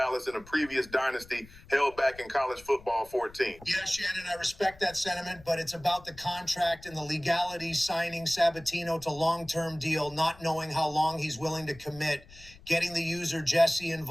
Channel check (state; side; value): noise; left; rumble, 22 dB below the sound